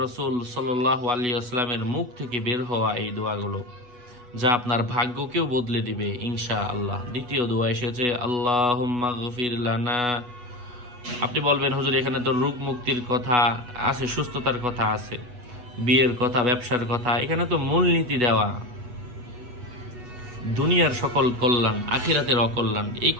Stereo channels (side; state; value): left; late; 8.2 ms